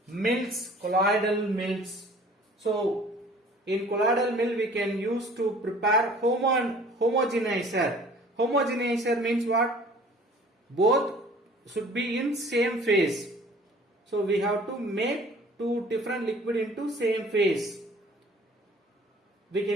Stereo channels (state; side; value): normal; both; correlation 0.50